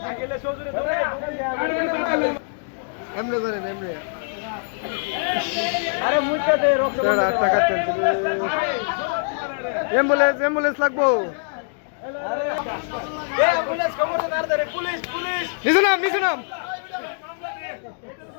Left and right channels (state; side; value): silent; right; digital silence